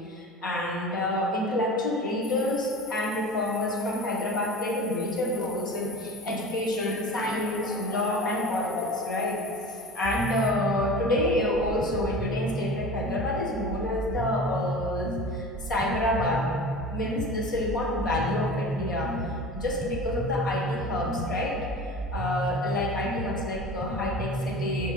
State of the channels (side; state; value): both; normal; correlation 0.35